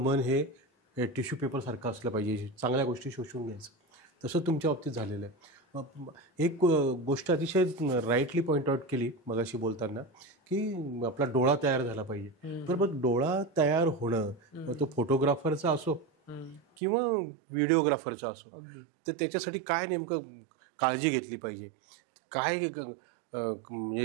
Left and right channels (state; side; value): drops out; left; at 16.6 s